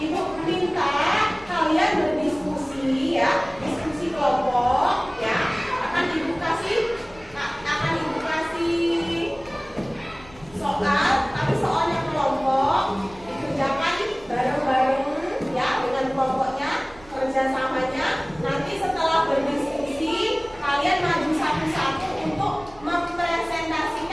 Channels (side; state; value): right; noise; rumble, 24 dB below the sound